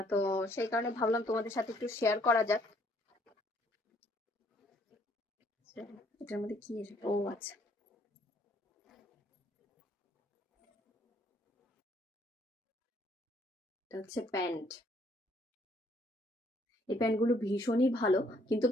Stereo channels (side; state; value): both; normal; correlation 0.65